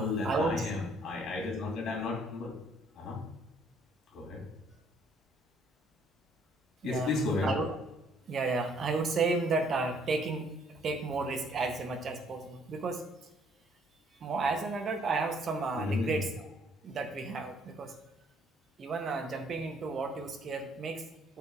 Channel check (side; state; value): both; normal; correlation 0.63